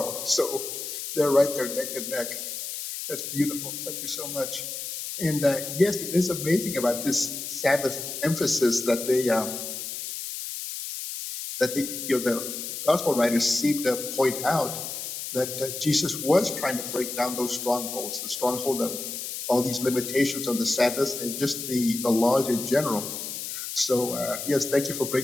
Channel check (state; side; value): noise; left; hiss, 6 dB below the sound